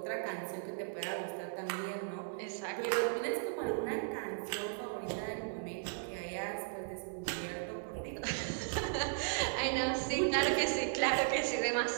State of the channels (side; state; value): left; silent; digital silence